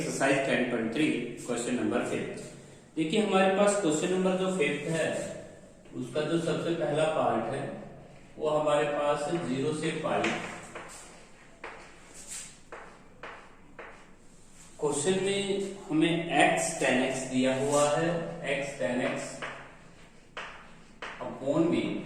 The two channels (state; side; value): identical; both; correlation 1.00